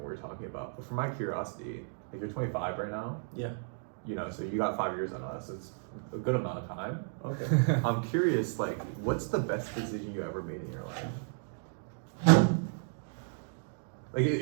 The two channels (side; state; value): left; silent; digital silence